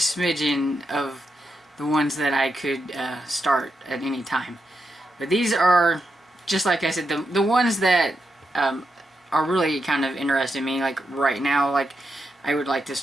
of the ones that I could start at any time. But these are, just like I said, the ones that are really kind of interesting me, like right now. Like I would like to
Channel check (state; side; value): normal; both; correlation 0.85